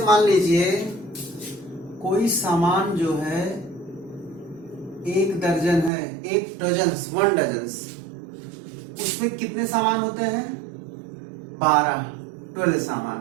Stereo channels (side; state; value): left; drops out; at 5.9 s